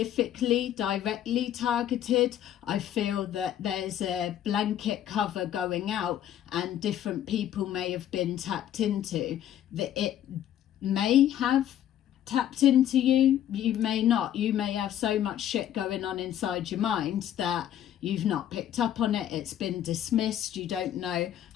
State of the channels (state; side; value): quieter; right; 11.1 dB